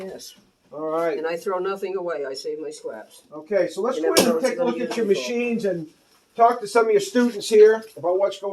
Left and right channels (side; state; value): both; identical; correlation 1.00